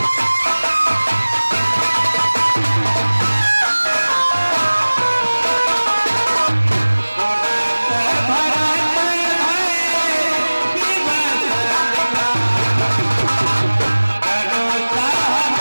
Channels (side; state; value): both; inverted; correlation -1.00